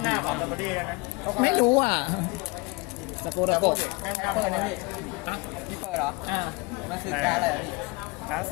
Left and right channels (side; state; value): right; quieter; 25.9 dB